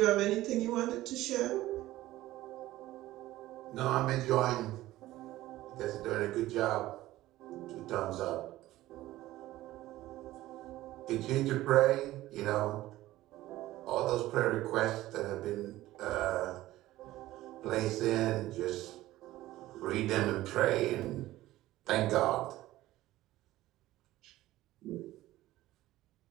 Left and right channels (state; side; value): quieter; left; 16.1 dB